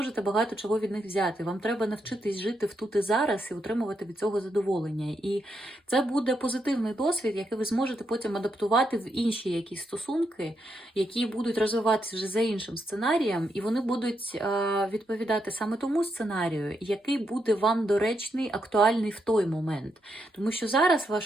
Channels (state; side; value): normal; both; correlation 0.81